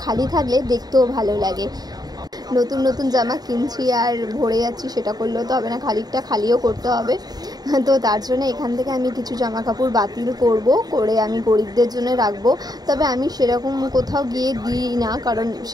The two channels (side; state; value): left; late; 0.19 ms